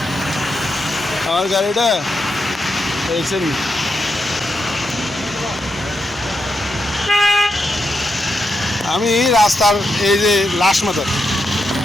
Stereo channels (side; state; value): both; normal; correlation 0.84